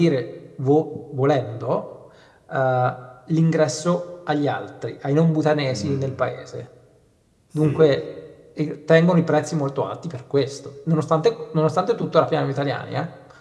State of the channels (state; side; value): identical; both; correlation 1.00